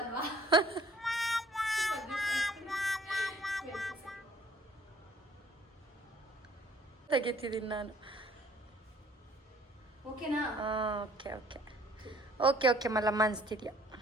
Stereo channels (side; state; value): both; normal; correlation 0.57